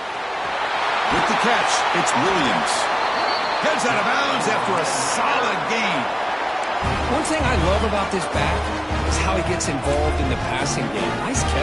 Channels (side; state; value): both; identical; correlation 1.00